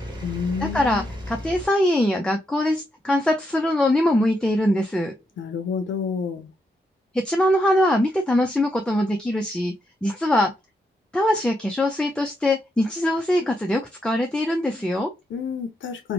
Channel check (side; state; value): both; normal; correlation 0.81